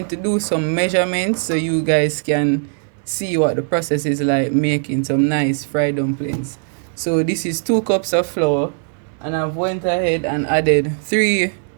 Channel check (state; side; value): silent; left; 62 dB below the other